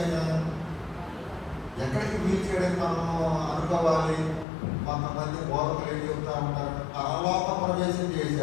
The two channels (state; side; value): drops out; right; at 4.5 s